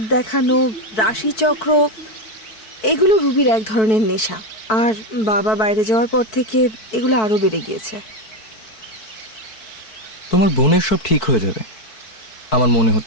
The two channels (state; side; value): late; right; 4.6 ms